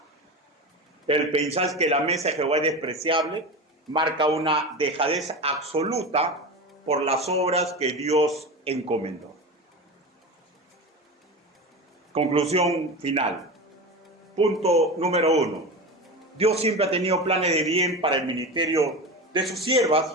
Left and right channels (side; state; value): both; normal; correlation 0.26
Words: El pensar que la mesa de Jehová es despreciable marca una dejadez absoluta por las obras que Dios encomendó. Conclusión final. Punto número 1. Dios siempre ha tenido planes de bien para el ministerio de sus